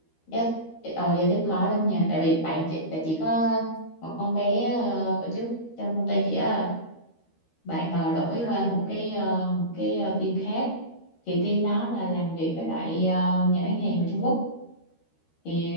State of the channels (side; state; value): right; late; 13 ms